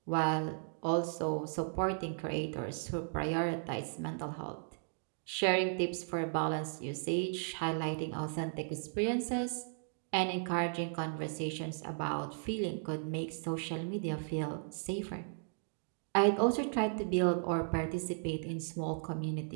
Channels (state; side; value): silent; left; digital silence